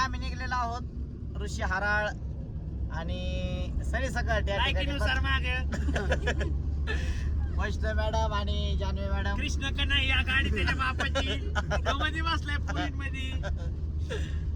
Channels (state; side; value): identical; both; correlation 1.00